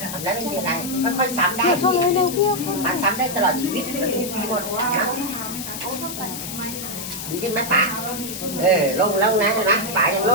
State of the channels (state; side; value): noise; left; hiss, 8 dB below the sound